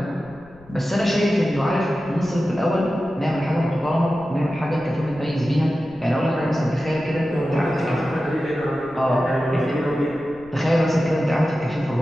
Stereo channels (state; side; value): noise; left; rumble, 24 dB below the sound